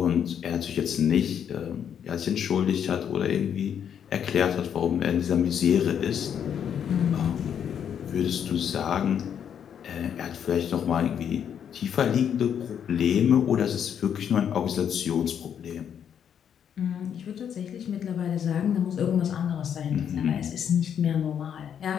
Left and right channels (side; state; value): right; quieter; 8.5 dB